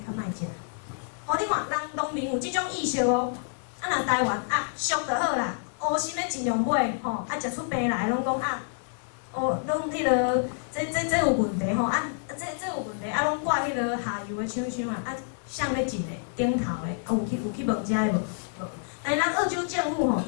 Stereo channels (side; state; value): right; silent; digital silence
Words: 莫食。你看，人农民有即种意识哦。若台湾俗就好啦，乌心的尽量买食出病来拢讲拢迄落，这有问题这有问题拢怪迄落下游的厂商谁咧进的顶头的有去问遮的无？但是咱澳洲政府